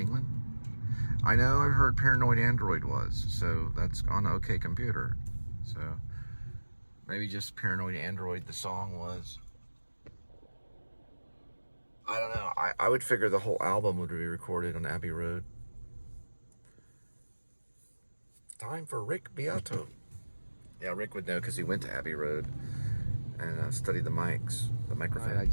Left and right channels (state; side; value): inverted; both; correlation -1.00